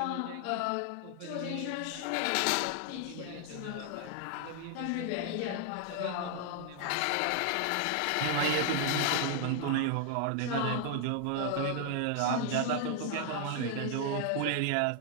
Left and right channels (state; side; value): different; both; correlation 0.00